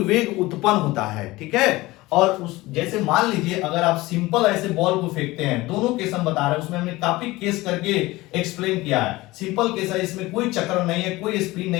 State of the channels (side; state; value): right; quieter; 19.8 dB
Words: उत्पन्न होता है। ठीक है, और उस जैसे मान लीजिए अगर आप सिंपल ऐसे बॉल को फेंकते हैं, दोनों केस हम बता रहे हैं, उसमें हमने काफी केस करके एक्सप्लेन किया है। सिंपल केस है, इसमें कोई चक्र नहीं है, कोई स्पिन